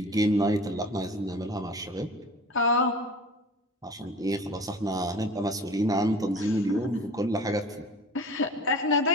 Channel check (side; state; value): both; normal; correlation 0.41